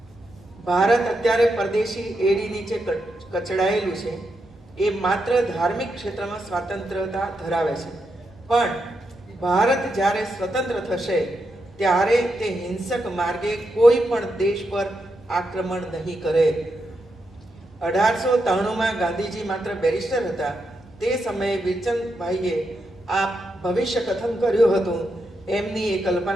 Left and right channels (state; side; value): normal; both; correlation 0.84